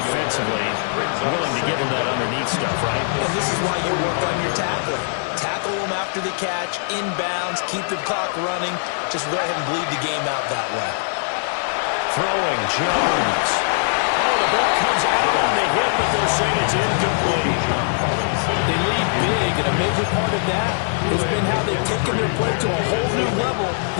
willing to give them that underneath stuff, right? And this is why you work on your tackling. Tackle them after the catch, inbounds, keep the clock running. Just go ahead and bleed the game out that way. Throwing, Jones. Oh, the ball comes out on the hip, but they'll say it's incomplete. They lead big, and a major part of that has been how they've taken their play to a whole new level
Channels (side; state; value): right; silent; digital silence